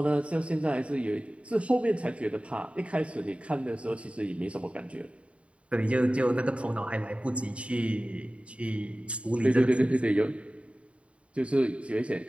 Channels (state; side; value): late; left; 0.062 ms